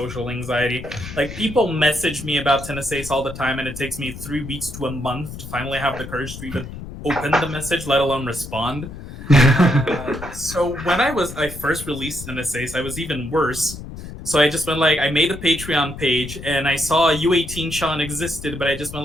anxiety. Like, people message me about Tennessee all the time, and it takes me 3 weeks to a month to finally have the courage to even open the message, let alone respond. So when I first released Tennessee, I was even worse. So I just went like, I made a Patreon page, and I saw U18 Sean existed, but I just went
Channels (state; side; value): noise; left; rumble, 11 dB below the sound